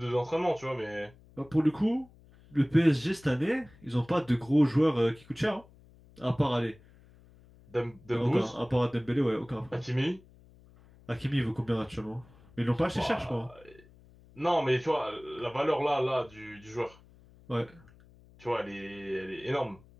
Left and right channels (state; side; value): noise; left; hum, 25 dB below the sound